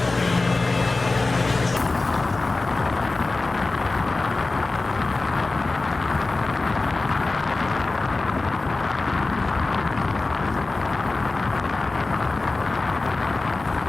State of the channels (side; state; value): right; quieter; 3.4 dB